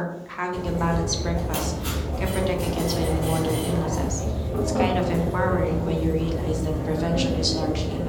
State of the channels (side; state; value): both; identical; correlation 1.00